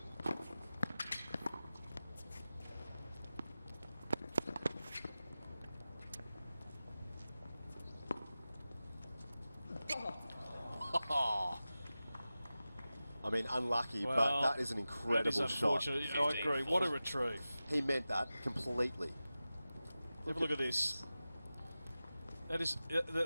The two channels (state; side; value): inverted; both; correlation -0.95